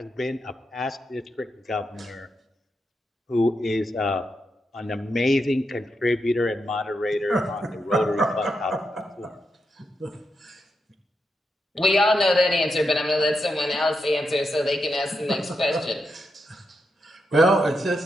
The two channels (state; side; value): normal; both; correlation 0.84